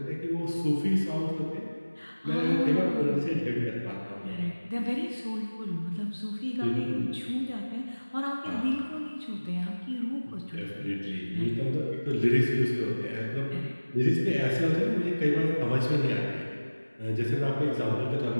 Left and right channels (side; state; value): both; inverted; correlation -1.00